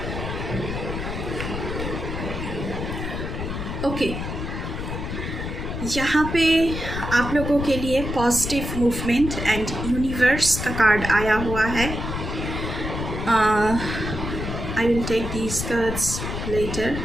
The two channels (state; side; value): noise; left; rumble, 5 dB below the sound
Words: ओके, यहाँ पे आप लोगों के लिए पॉजिटिव मूवमेंट एंड यूनिवर्स का कार्ड आया हुआ है। I will take these cards later.